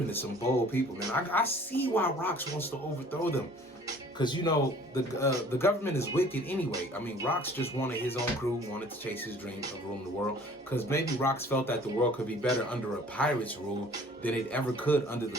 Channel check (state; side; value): normal; both; correlation 0.52